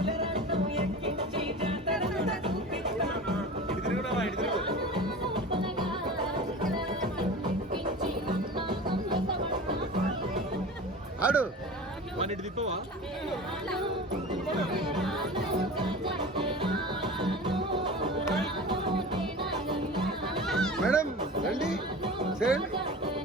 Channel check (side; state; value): both; normal; correlation 0.34